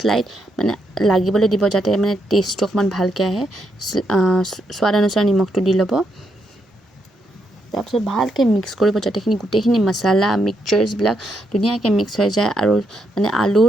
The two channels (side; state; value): both; normal; correlation 0.79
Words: মানে লাগিবলৈ দিব যাতে মানে টেষ্টটো অকণমান ভালকৈ আহে সোৱাদ অনুসাৰে নিমখটো দি ল'ব তাৰপিছত ভালকৈ মিক্স কৰিব যাতেখিনি গোটেইখিনি মছলা মিক্সচাৰ্ছবিলাক ধুনীয়াকৈ মিক্স হৈ যায় আৰু মানে